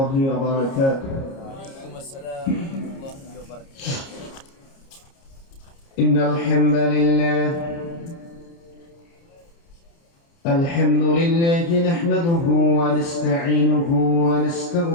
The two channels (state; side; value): late; right; 30 ms